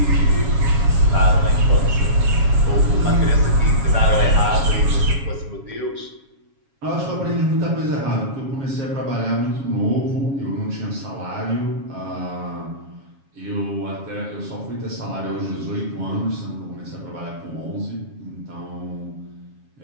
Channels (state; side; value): late; left; 7.3 ms